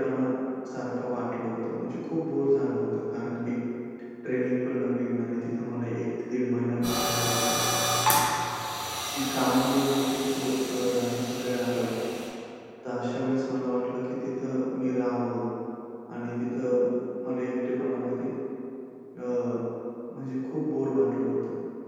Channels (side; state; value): both; identical; correlation 1.00